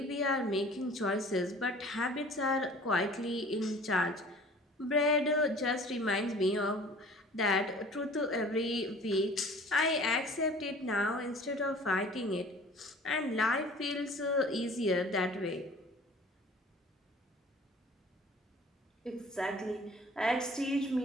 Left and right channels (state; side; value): normal; both; correlation 0.47